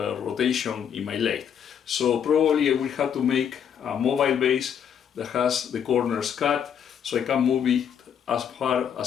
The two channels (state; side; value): quieter; right; 8.2 dB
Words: in my lathe. So probably I will have to make a mobile base that has the corners cut, so I can move it as far